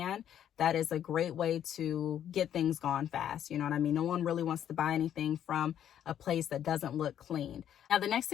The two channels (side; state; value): right; quieter; 10.1 dB